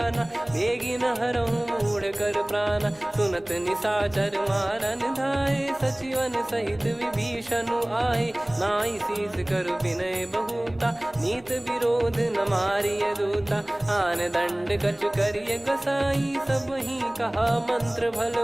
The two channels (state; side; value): noise; left; hum, 28 dB below the sound